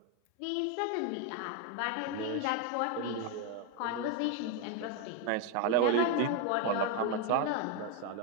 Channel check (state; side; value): different; both; correlation 0.01